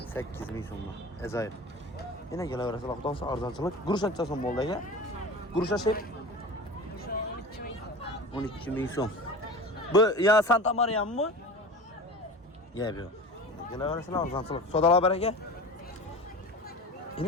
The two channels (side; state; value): both; normal; correlation 0.34